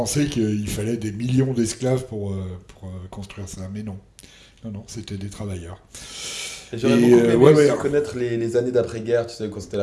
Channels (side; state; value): both; identical; correlation 1.00